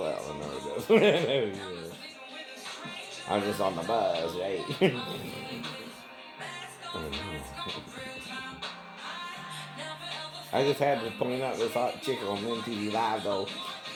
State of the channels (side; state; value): both; identical; correlation 1.00